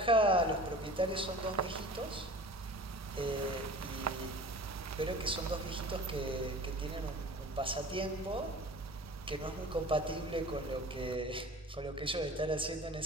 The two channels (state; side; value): normal; both; correlation 0.40